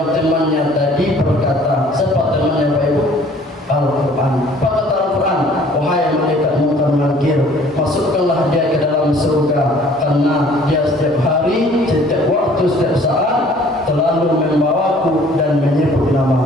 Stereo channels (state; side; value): normal; both; correlation 0.54